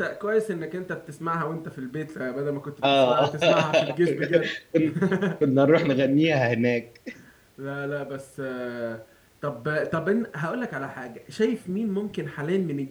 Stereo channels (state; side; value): identical; both; correlation 1.00